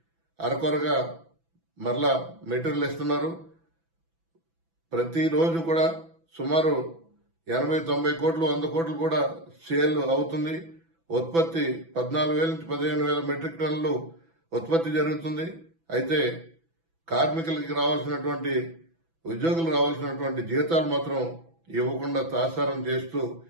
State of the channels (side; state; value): left; late; 6.0 ms